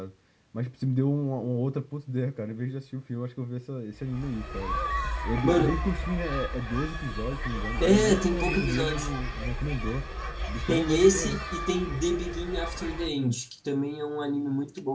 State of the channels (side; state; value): both; identical; correlation 1.00